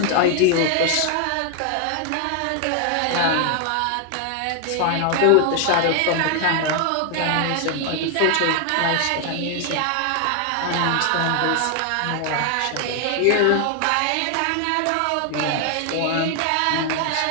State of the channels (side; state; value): both; different; correlation 0.00